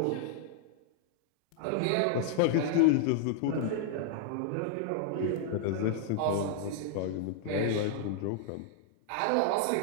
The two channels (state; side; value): different; both; correlation -0.01